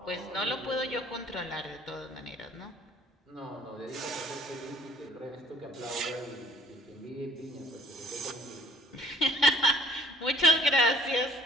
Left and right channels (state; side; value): normal; both; correlation 0.54